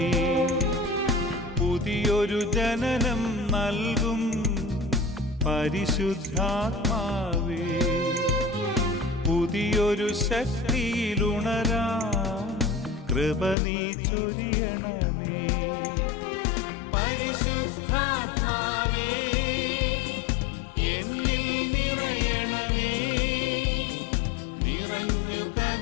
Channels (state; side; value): drops out; right; at 13.6 s